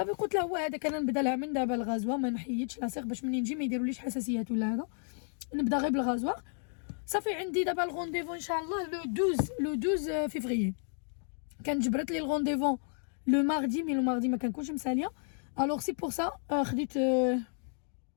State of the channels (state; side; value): silent; right; 56 dB below the other